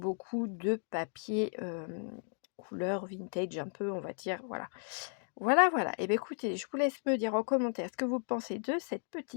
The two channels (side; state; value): right; silent; 55 dB below the other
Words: de papier couleur vintage, un peu, on va dire. Voilà. Voilà, voilà. Et bien écoutez, je vous laisse me dire en commentaire ce que vous pensez de cette